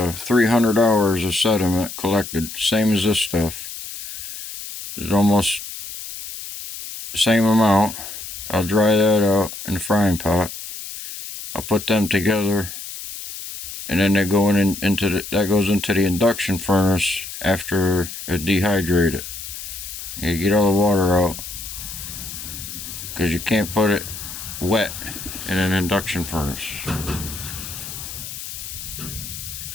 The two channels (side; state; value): left; noise; hiss, 10 dB below the sound